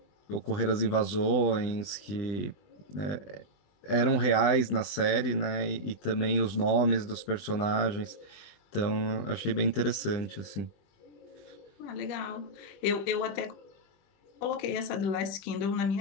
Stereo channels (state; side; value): late; right; 20 ms